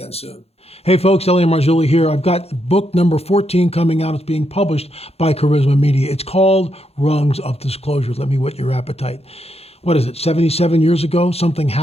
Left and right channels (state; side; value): late; right; 0.29 ms